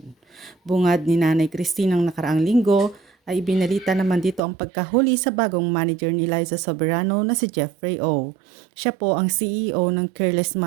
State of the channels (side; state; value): left; drops out; at 4.4 s